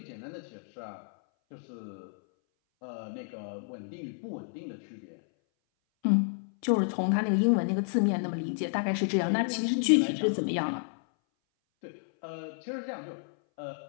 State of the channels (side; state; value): right; silent; 57 dB below the other